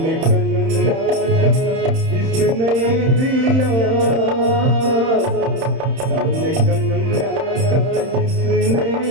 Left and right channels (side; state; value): left; late; 31 ms